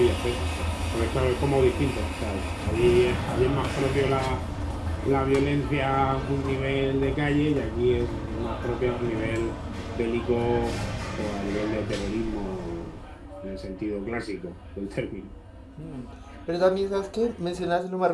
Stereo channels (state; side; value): identical; both; correlation 1.00